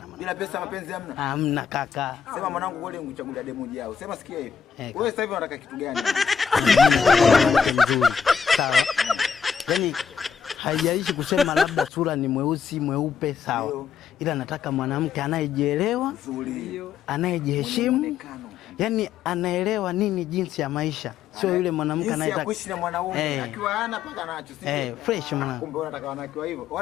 Bila pesa mapenzi hamna? Hamna kaka. Sema mwanangu wewe ungechagulia demo jao. Sema sikia hivi. Wewe sasa hivi unataka kitu gani? Nzuri. Sawa. Yaani haijalishi kusema labda sura ni mweusi mweupe sawa. Ila nataka mwanamke anayejielewa, nzuri, anayejiheshimu. Yaani anaelewa nini jinsi ya maisha. Sio yule mwanamke anayetaka kuishi na mwanaume akiwa hana paka nacho. Fresh mwanangu. Kumbe unataka wanawake wa hivyo.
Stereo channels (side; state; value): right; quieter; 6.9 dB